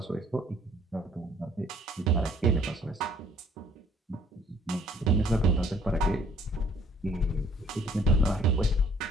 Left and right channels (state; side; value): normal; both; correlation 0.60